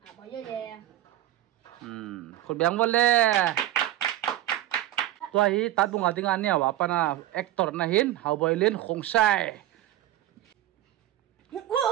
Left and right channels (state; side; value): quieter; left; 13.8 dB